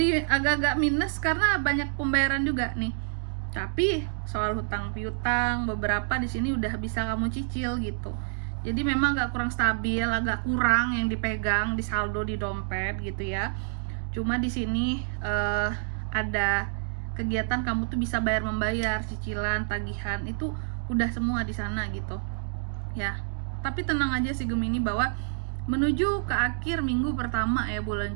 agak-agak minus karena banyak pembayaran juga nih. Tapi soal hutang piutang beberapa di sini udah bisa kamu cicil gitu. Jadi memang agak kurang stabil, agak kurang yang dipegang di saldo di dompet gitu ya. Cuma di sini ada kegiatan kamu tuh bisa membayar cicilan, tagihan, itu udah semua di sana gitu ya. Tapi tenang aja sih Gemini, bahwa menuju ke akhir minggu pertama ya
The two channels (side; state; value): left; silent; digital silence